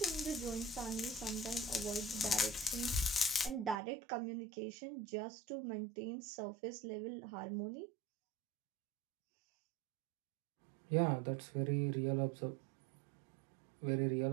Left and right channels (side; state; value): left; drops out; at 3.8 s